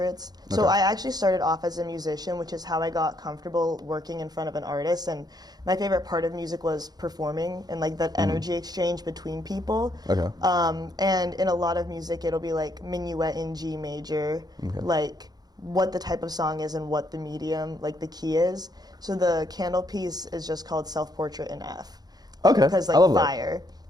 So I actually started off as a musician, which is how I got comfortable working in front of an artist. And my favorite part of music was performing and like that energy exchange between people. Okay. And in a lot of music, it'll be like minuet in G major, like what the type of song is and what the medium, like the key is. So the candle piece is just called Self-Portrait in F. Okay. Because I like love that. fire.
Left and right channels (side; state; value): left; late; 0.19 ms